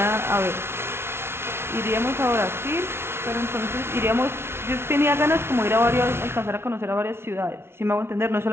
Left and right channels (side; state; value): left; late; 0.12 ms